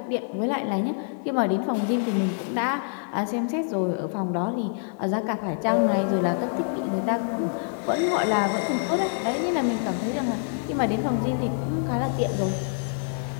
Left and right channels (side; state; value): right; silent; 61 dB below the other